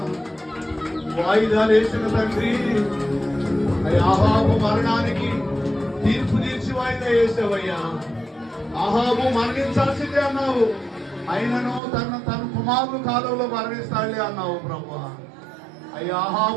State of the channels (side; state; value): left; drops out; at 11.8 s